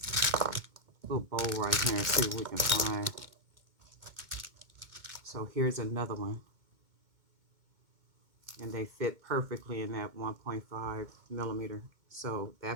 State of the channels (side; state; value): left; late; 2.2 ms